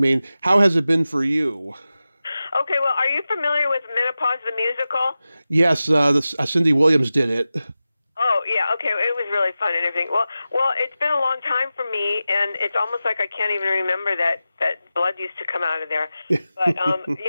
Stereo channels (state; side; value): inverted; both; correlation -0.94